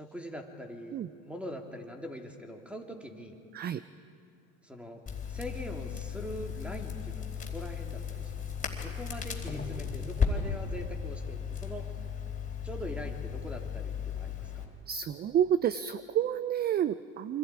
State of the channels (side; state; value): both; normal; correlation 0.43